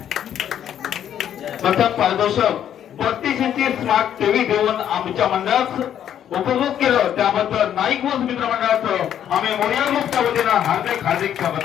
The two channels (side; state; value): right; quieter; 10.0 dB